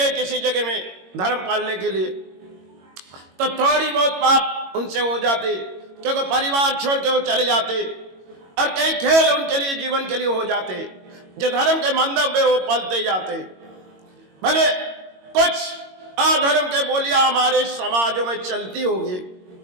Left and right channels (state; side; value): late; left; 22 ms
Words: किसी जगह में धर्म पालने के लिए, तो थोड़ी बहुत पाप उनसे हो जाते, क्योंकि परिवार छोड़ के वो चले जाते और कई खेल उनके लिए जीवन के लिए हो जाते, जो धर्म के मंदिर में वो पलते जाते। भले कुछ अधर्म के बोलियां हमारे समाजों में चलती होगी,